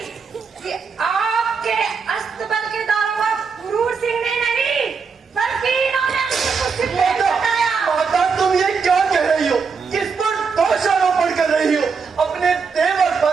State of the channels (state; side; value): quieter; left; 5.4 dB